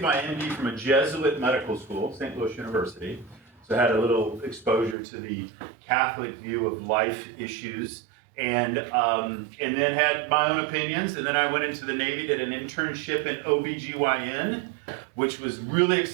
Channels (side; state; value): left; drops out; at 5.0 s